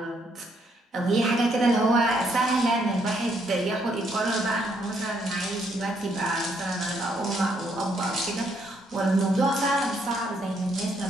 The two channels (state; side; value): normal; both; correlation 0.72